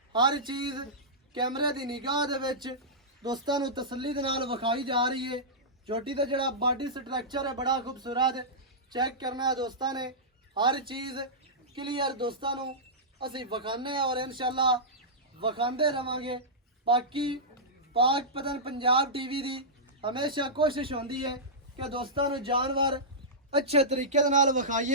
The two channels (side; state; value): both; normal; correlation -0.15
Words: हर चीज़ कैमरे की निगाह दे विच दोस्तों को तसल्ली दे नाल विखाई जा रही है। चोटी का जोड़ा बॉडी स्ट्रक्चर है बड़ा खूबसूरत चेक करना है दोस्तों ने। हर चीज़ क्लीयर दोस्तों को असी विखाने और इंशाल्लाह विखाते रवांगे। बाकी पाक पतन पंजाब टीवी की हमेशा कोशिश होती है कि दोस्तों को जानवर अच्छे तरीके दे नाल